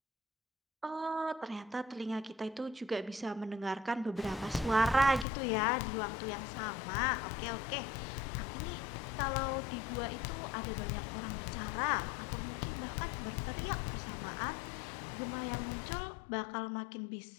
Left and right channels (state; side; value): drops out; right; at 5.2 s